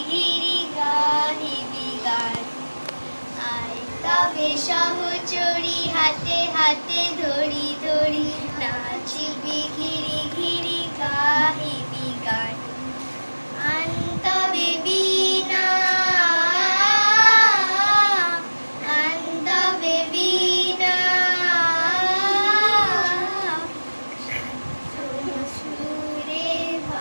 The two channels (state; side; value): inverted; both; correlation -1.00